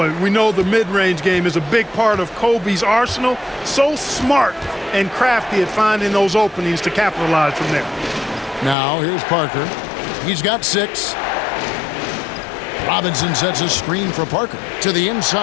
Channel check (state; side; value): drops out; right; at 8.8 s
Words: we know the mid-range game is a big part of Kobe's arsenal. So smart and crafty at finding those openings to capitalize from there. Now here's Parker. He's got 6. Robinson sets a screen for Parker to the